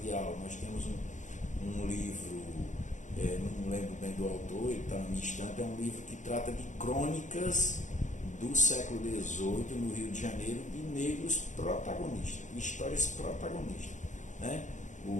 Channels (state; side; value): late; right; 0.36 ms